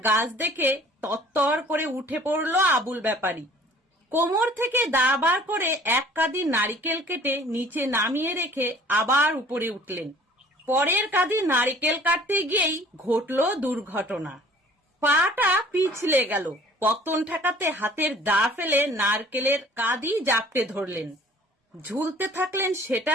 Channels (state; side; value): normal; both; correlation 0.52